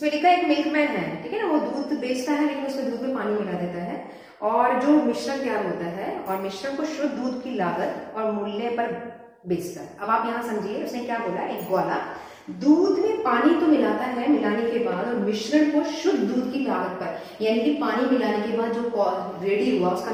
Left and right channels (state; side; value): identical; both; correlation 1.00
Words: लिखा है एक मिल्कमैन है, ठीक है ना, वो दूध बेचता है लेकिन उसमें दूध में पानी मिला देता है और जो मिश्रण तैयार होता है और मिश्रण को शुद्ध दूध की लागत और मूल्य पर बेचता है। अब आप यहाँ समझिए उसने क्या बोला, एक ग्वाला दूध में पानी तो मिलाता है मिलाने के बाद और मिश्रण को शुद्ध दूध की लागत पर, यानी कि पानी मिलाने के बाद जो रेडी हुआ उसका